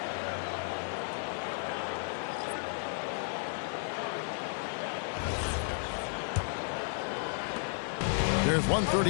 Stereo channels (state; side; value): silent; right; 56 dB below the other